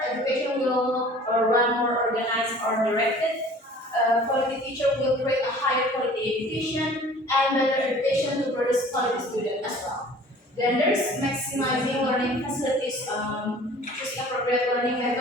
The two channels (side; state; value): both; normal; correlation 0.48